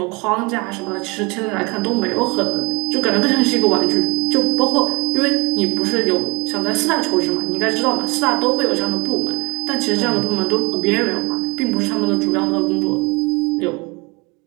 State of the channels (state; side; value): quieter; left; 28.2 dB